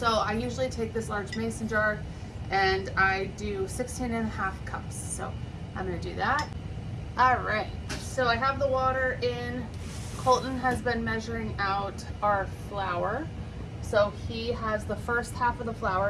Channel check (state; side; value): identical; both; correlation 1.00